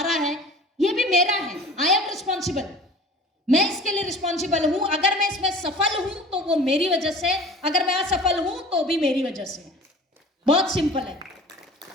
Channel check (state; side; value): normal; both; correlation 0.43